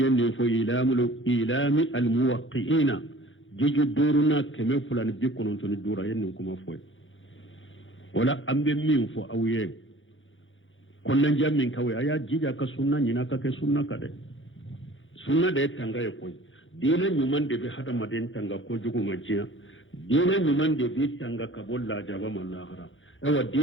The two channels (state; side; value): late; right; 0.57 ms